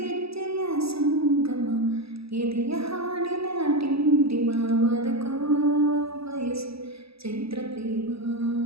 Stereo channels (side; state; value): left; late; 0.77 ms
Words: ಹೆಜ್ಜೆಯ ಸಂಗಮ ಎದೆಯ ಹಾಡಿನ ಟಿಂಟಿಮ ಬದುಕೋ ಬಯಸು ಚೈತ್ರ ಪ್ರೇಮ